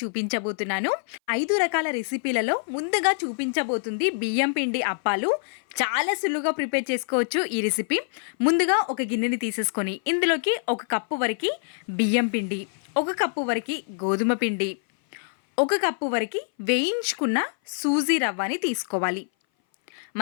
చూపించబోతున్నాను. 5 రకాల రెసిపీలలో ముందుగా చూపించబోతుంది బియ్యం పిండి అప్పాలు. చాలా సులువుగా ప్రిపేర్ చేసుకోవచ్చు ఈ రెసిపీ. ముందుగా ఒక గిన్నెని తీసేసుకొని ఇందులోకి 1 కప్పు వరకు బియ్యం పిండి, 1 కప్పు వరకు గోధుమ పిండి, 1 కప్పు వరకు వేయించుకున్న సూజీ రవ్వని తీసుకోవాలి.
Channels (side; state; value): right; silent; 59 dB below the other